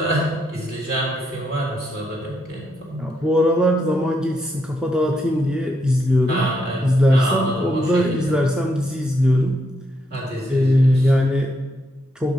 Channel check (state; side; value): normal; both; correlation 0.78